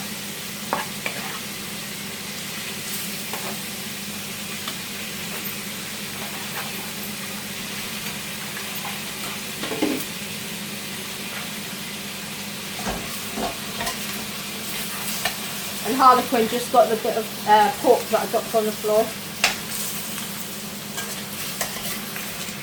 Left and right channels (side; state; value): both; identical; correlation 1.00